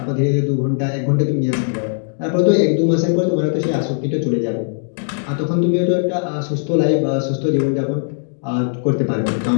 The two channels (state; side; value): silent; right; digital silence